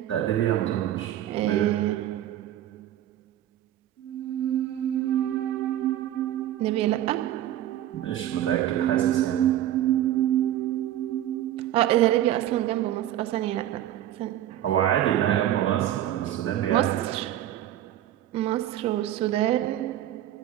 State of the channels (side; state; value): left; quieter; 12.4 dB